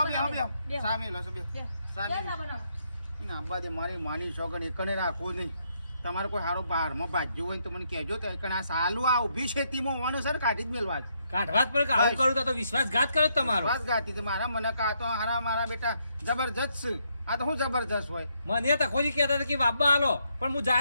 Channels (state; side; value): inverted; both; correlation -0.75